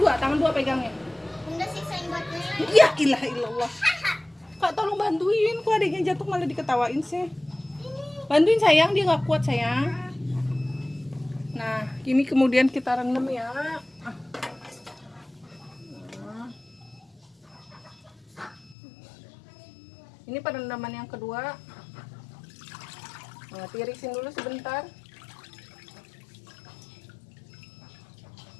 dua pegangnya. Bunda siksain buatnya. Ya ilah illallah. Kak tolong bantuin, kok adiknya jatuh malah diketawain sih. Bantuin sayang, dia nggak kuat sayang. Nah, ini kemudian kita rendam ya. Nah. Ini perendaman yang kedua. Nah, tirisin dulu sebentar.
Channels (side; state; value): right; drops out; at 18.8 s